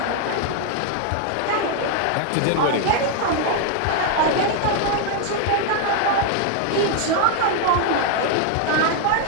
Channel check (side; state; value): both; different; correlation 0.00